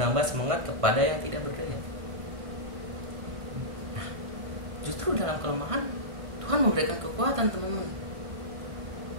semangat kepada yang tidak berdaya. Nah, justru dalam kelemahan Tuhan memberikan kekuatan, teman-teman.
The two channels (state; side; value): late; left; 1.5 ms